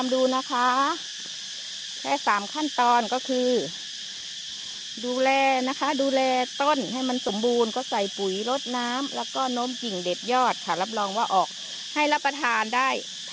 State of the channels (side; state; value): both; identical; correlation 1.00